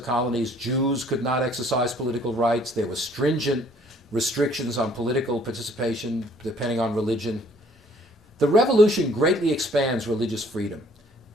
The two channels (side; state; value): both; normal; correlation 0.59